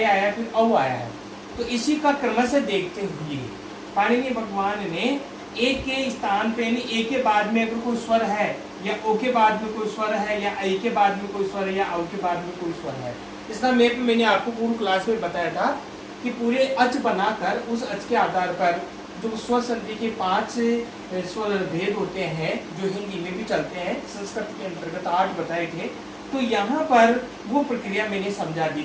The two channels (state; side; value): identical; both; correlation 1.00